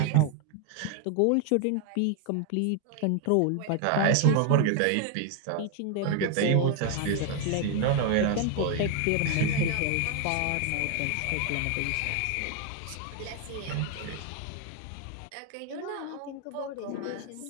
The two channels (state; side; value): different; both; correlation 0.01